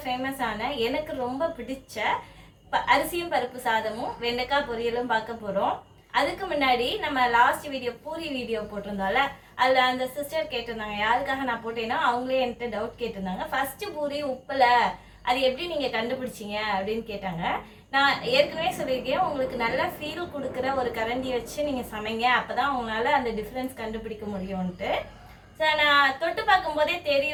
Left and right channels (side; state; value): both; identical; correlation 1.00